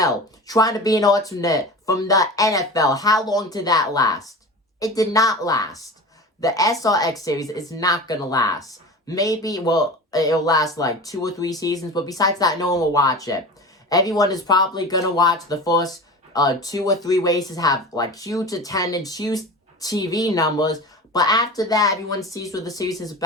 trying to be an alternate from the NFL. How long did that last? It did not last. The SRX series is not going to last. Maybe, it'll last like 2 or 3 seasons, but besides that, no one will watch it. Everyone is probably going to watch the first 2 or 3 races, have like huge attendance, huge TV numbers, but after that, everyone sees what the series is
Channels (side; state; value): both; normal; correlation 0.33